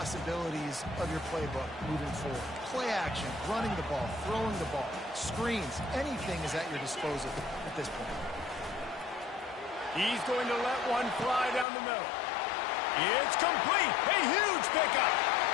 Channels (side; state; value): right; drops out; at 11.7 s